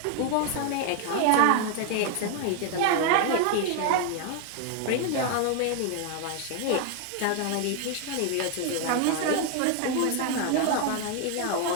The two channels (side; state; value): both; different; correlation 0.01